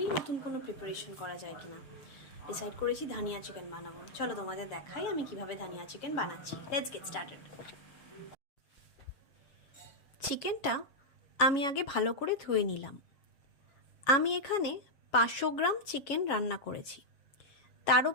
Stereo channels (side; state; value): right; late; 7.3 ms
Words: নতুন কোনো প্রিপারেশন করা যায় কিনা। ডিসাইড করেছি ধানিয়া চিকেন বানাবো। চলো তোমাদের দেখাই আমি কিভাবে ধানিয়া চিকেন বানাচ্ছি। Let's get started. চিকেনটা আমি আগে ভালো করে ধুয়ে নিলাম। আমি এখানে 500 গ্রাম চিকেন রান্না করেছি। তার